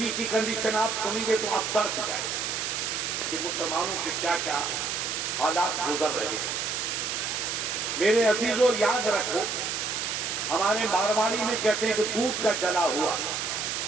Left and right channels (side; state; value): right; noise; hiss, 2 dB below the sound